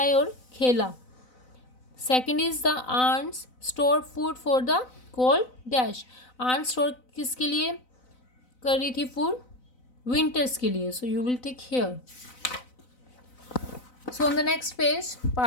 और खेला. Second is the ants stored food for the cold dash. ants store किसके लिए कर रही थी food, winters के लिए. So you will take here. So on the next page,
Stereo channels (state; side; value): late; right; 4.0 ms